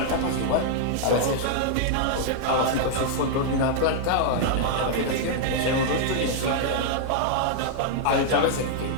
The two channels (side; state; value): both; different; correlation -0.01